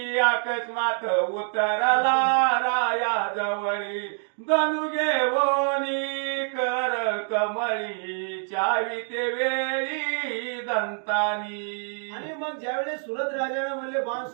अकस्मात उतरला राया जवळी धनु घेवोनी कर कमळी चावी ते वेळी दंतानी. आणि मग ज्यावेळेस सुरत राजाने म्हणले बाण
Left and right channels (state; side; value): silent; left; digital silence